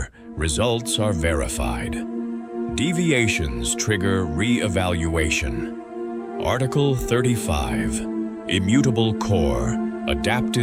results are verified. Deviations trigger re-evaluation. Article 35, Immutable Core,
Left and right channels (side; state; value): both; identical; correlation 1.00